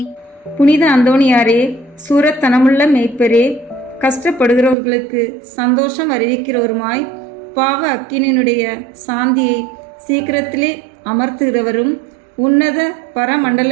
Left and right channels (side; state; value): left; drops out; at 4.8 s